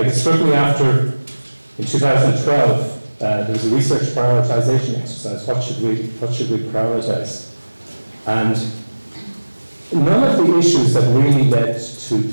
it struck me after, in 2012, there was a research prioritization exercise. What should we prioritize? And none of the issues that really led to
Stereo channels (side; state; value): both; inverted; correlation -1.00